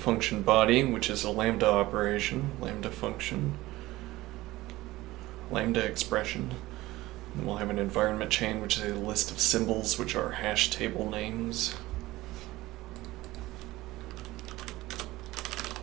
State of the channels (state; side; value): quieter; left; 18.0 dB